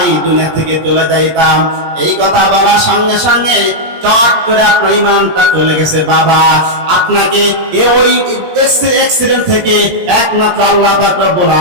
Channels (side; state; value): left; late; 17 ms